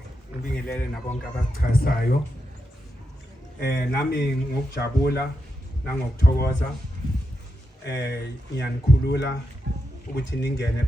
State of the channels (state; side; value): normal; both; correlation 0.86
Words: ngibingelele nabonke abachazayo nami ngokujabula nangokuthokoza ngiyanikhulula ukuthi ningene